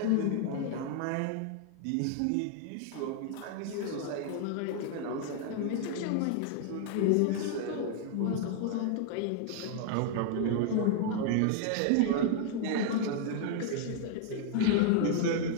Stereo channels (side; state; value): both; different; correlation 0.00